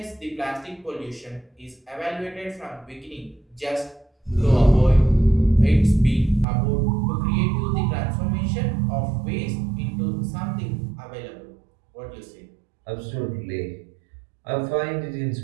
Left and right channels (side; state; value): left; drops out; at 6.5 s